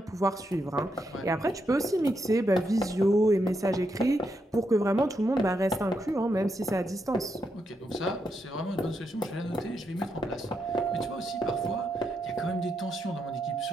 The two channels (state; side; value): normal; both; correlation 0.82